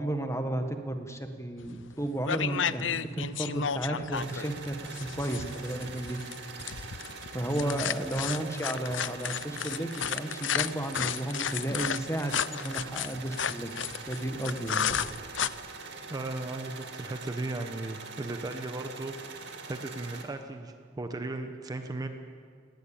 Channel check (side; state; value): both; normal; correlation 0.46